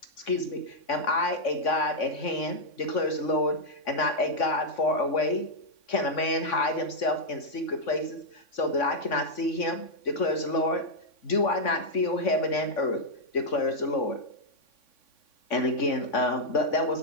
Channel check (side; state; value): right; late; 3.5 ms